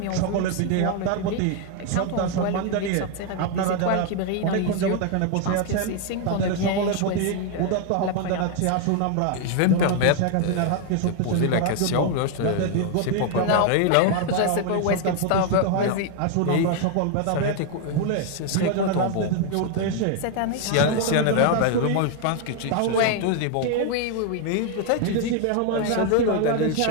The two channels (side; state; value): both; different; correlation 0.01